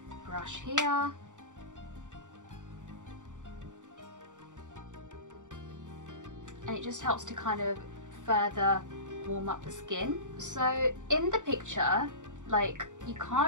brush here. And it just helps to kind of further warm up the skin. So in the picture, like, you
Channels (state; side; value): late; left; 0.86 ms